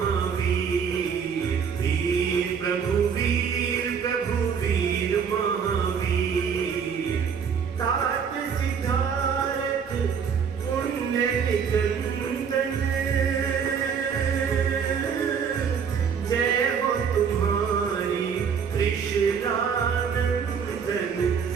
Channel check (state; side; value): quieter; left; 6.8 dB